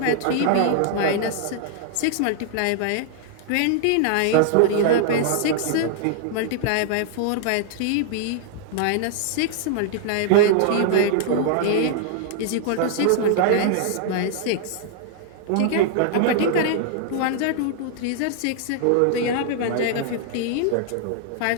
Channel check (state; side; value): different; both; correlation -0.01